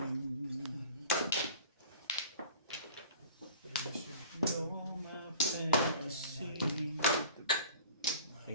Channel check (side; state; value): both; inverted; correlation -0.44